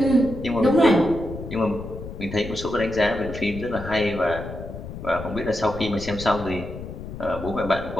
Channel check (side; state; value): left; noise; rumble, 10 dB below the sound